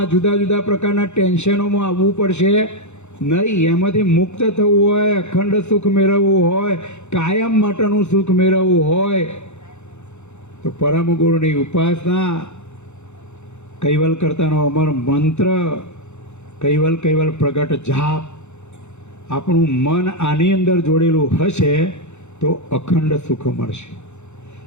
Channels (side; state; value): right; late; 0.83 ms